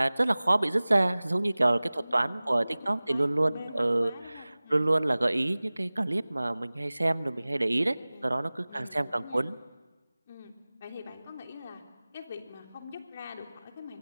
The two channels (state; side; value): inverted; both; correlation -0.99